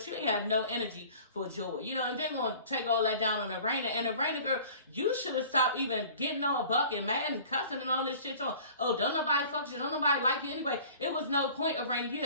you ain't had no energy for Joy. You know, and they're going to take all that down on the Raina. And the Raina girl, you should have stopped even getting all buck and mad and cussing and all this shit on. Oh, don't nobody fuck you. Don't nobody like you anyway. It was no point of Raina. You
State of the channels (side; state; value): both; inverted; correlation -0.46